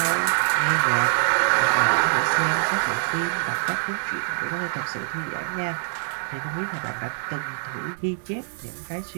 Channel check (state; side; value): silent; left; digital silence